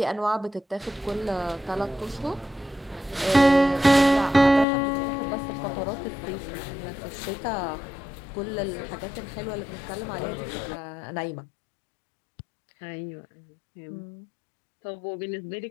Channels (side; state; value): right; drops out; at 4.7 s